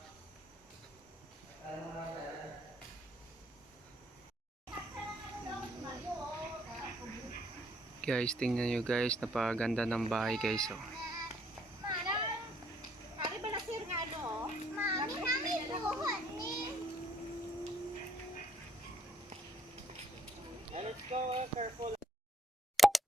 Guys, tingnan nyo guys, napaganda ng bahay guys, oh. Let's go, careful.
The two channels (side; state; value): both; normal; correlation 0.67